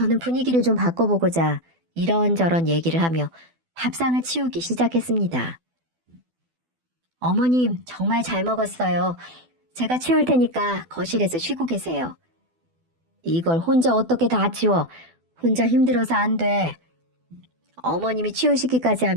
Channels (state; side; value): late; left; 12 ms